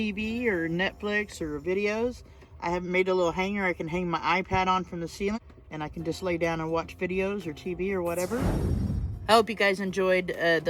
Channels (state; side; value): identical; both; correlation 1.00